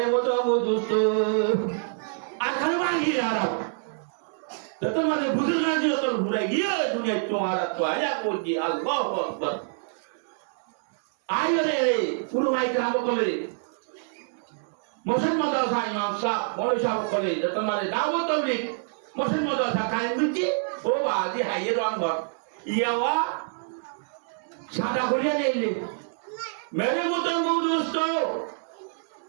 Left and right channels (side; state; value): left; silent; 61 dB below the other